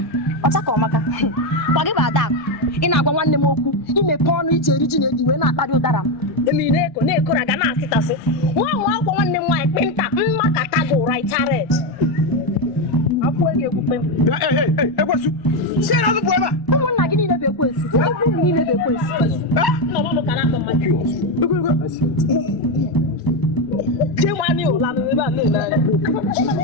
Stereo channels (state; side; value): late; right; 1.1 ms